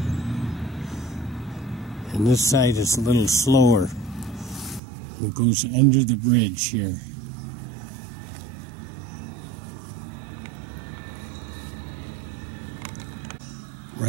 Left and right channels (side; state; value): left; drops out; at 4.8 s